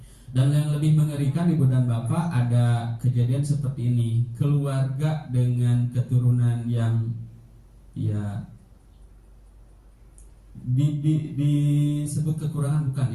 Dan yang lebih mengerikan Ibu dan Bapak, ada kejadian seperti ini. Keluarga dengan keturunan yang ya disebut kekurangan bukan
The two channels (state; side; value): identical; both; correlation 1.00